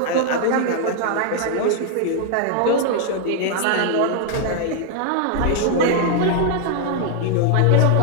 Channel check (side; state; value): both; different; correlation 0.00